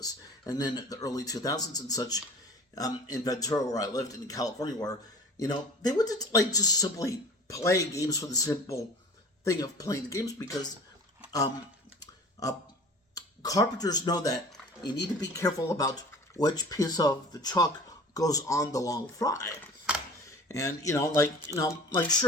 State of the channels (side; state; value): both; normal; correlation 0.43